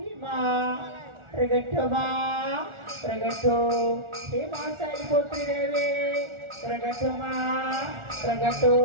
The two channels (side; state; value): left; late; 1.4 ms